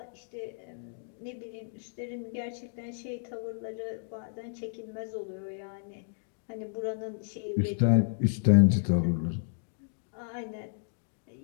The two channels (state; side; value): silent; right; digital silence